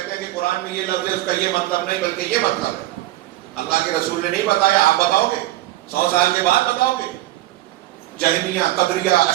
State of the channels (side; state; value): left; quieter; 16.3 dB